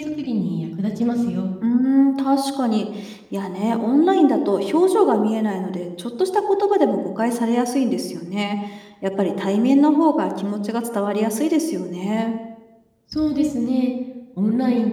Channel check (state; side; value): identical; both; correlation 1.00